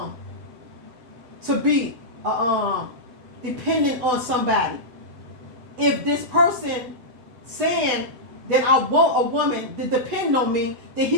be dependent on somebody. If this person saying that I want a woman to depend on me, then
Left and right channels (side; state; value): left; late; 8.1 ms